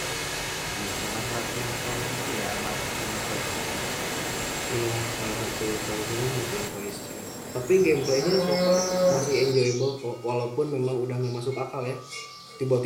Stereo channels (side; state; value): both; identical; correlation 1.00